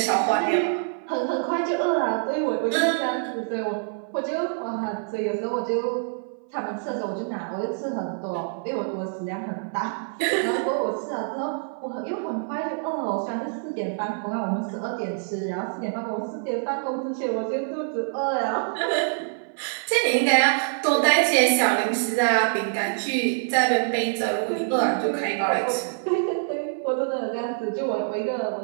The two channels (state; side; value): silent; left; 59 dB below the other